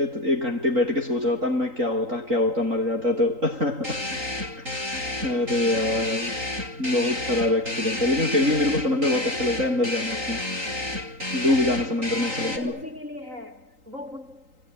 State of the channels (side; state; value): left; late; 3.8 ms